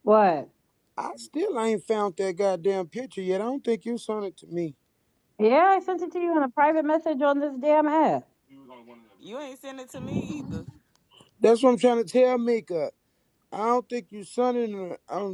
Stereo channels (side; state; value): both; identical; correlation 1.00